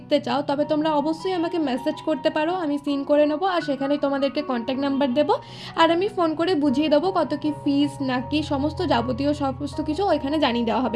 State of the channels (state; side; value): identical; both; correlation 1.00